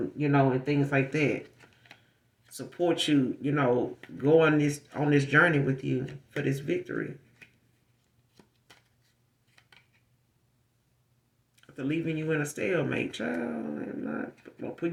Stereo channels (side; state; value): both; identical; correlation 1.00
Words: and things like that. Support you, go on this journey with you for this victory. After leaving you in a stalemate, child, I'm not gonna put